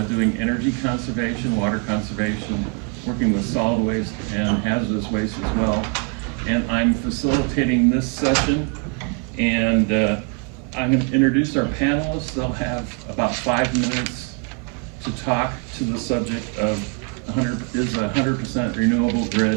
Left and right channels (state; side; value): quieter; left; 35.2 dB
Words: doing energy conservation, water conservation, working with solid waste and hazardous waste as well. And I'm facilitating this session, and I'm going to introduce our panelists. They'll have about 5 minutes to talk to the subject of is a 100% renewable